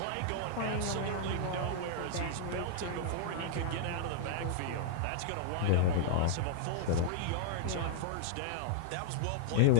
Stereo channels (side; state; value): both; different; correlation -0.01